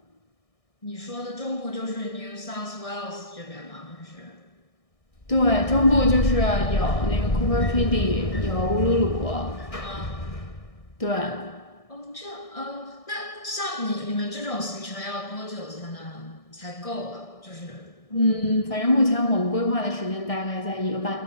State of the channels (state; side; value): late; right; 1.6 ms